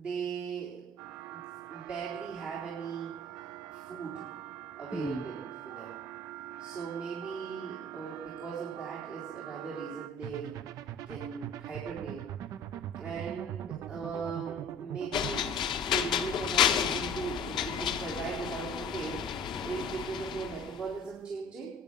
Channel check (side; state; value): both; normal; correlation 0.44